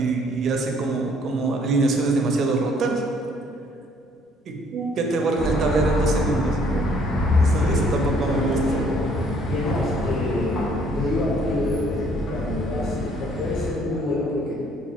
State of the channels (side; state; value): both; normal; correlation 0.62